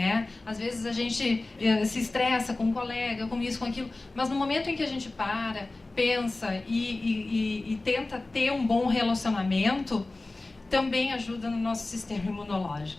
Às vezes a gente se estressa com um colega, com isso, com aquilo, mas no momento em que a gente para, pensa e tenta ter um bom relacionamento, também ajuda no nosso sistema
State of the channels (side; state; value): right; quieter; 3.1 dB